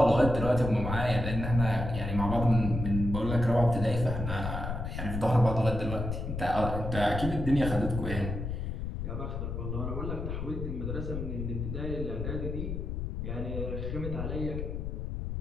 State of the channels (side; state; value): left; noise; rumble, 4 dB below the sound